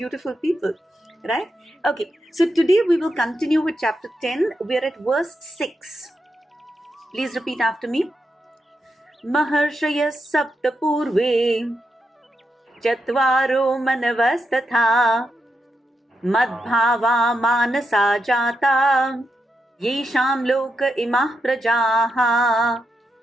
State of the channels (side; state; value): both; normal; correlation 0.84